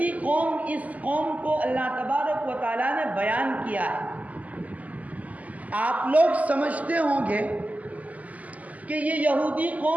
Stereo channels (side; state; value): left; late; 0.075 ms